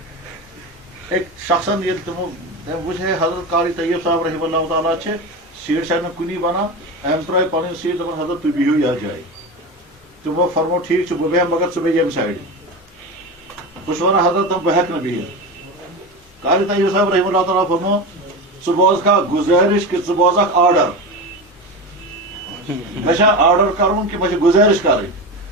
أکۍ شخصن ییٚلہِ تِمو تٔمۍ وٕچھ ہے حضرت قاری طیب صاحب رحمہ اللہ تعالیٰ چھِ سیٹ چھنہٕ کُنی بنان أمۍ ترٛٲے پنٕنۍ سیٹ دپان حضرت تُہۍ بِہِو یتھ جایہِ تِمو فرمو ٹھیٖک چھُ بہٕ بیٚہمہٕ مگر ژٕ بیٚہہ ییٚمہِ سایڈٕ بہٕ چھُس ونان حضرت بہٕ ہٮ۪کہٕ نہٕ بِہِتھ قاری طیب صاحب رحمہ اللہ تعالیٰ فرمو ژٕ بوزکھا گُزٲرِش کہِ ژٕ بوزکھ آرڈر مےٚ چھا آرڈر کرُن کہِ مےٚ چھِ گُزٲرِش کرٕنۍ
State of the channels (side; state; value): both; normal; correlation 0.23